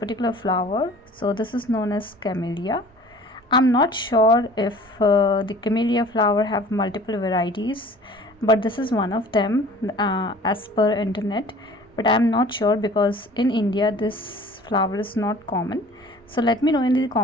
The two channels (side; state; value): both; normal; correlation 0.47